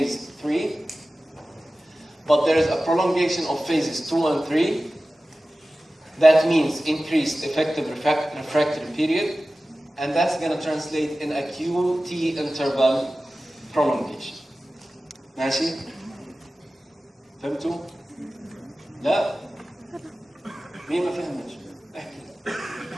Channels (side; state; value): both; normal; correlation 0.96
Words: 3. But there is a prolongation of phases 2 and 3. That means increased effective refractory period, and that's going to translate in a QT interval prolongation. ماشي؟ فهمتوا؟ لا؟ مين ما فهمش؟ احكي.